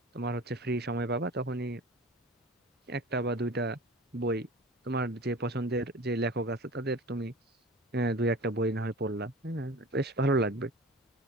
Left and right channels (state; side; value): normal; both; correlation 0.38